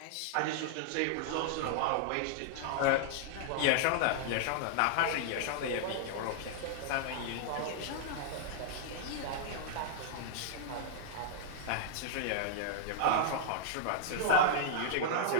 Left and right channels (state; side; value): different; both; correlation -0.01